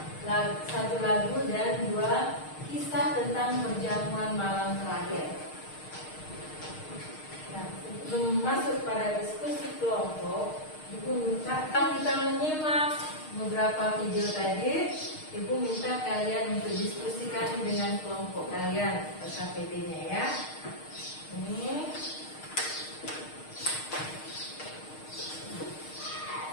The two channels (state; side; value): late; right; 6.5 ms